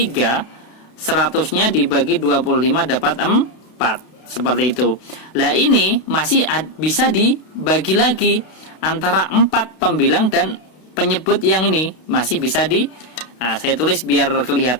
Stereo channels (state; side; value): late; right; 32 ms